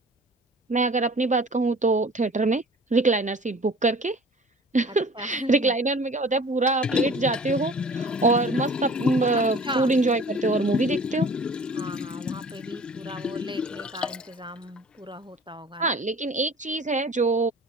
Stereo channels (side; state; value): both; normal; correlation 0.46